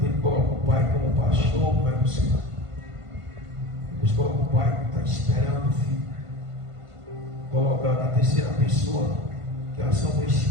ele coloca o Pai como pastor, vai buscar. Depois coloca o Pai que está esperando o filho. Coloca na terceira pessoa, que é a ação do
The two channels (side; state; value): left; late; 1.5 ms